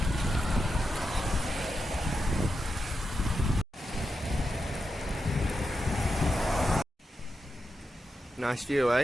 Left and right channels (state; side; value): normal; both; correlation 0.88